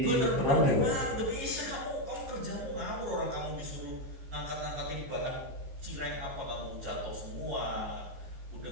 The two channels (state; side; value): late; left; 15 ms